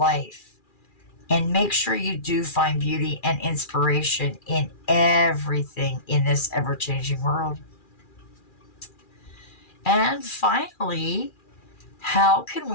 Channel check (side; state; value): right; late; 2.4 ms